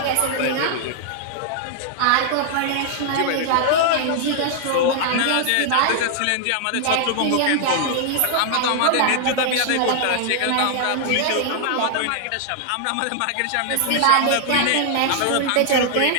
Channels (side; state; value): both; different; correlation -0.01